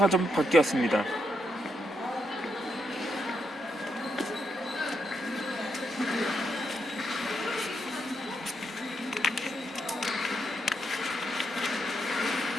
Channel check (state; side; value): normal; both; correlation 0.80